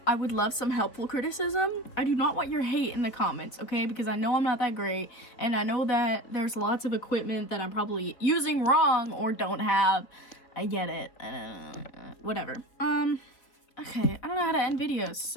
I would love some helpful criticism. I do not want your hate in the comments, okay? Because I know I'm not that great, and I know that there's lots of equipment that I'm probably using wrong or don't have. I get it. Whatever. Okay, I don't know how to end videos,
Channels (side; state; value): right; late; 3.7 ms